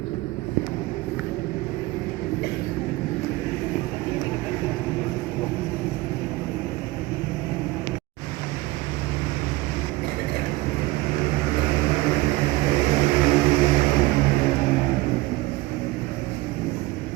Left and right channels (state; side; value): quieter; left; 20.0 dB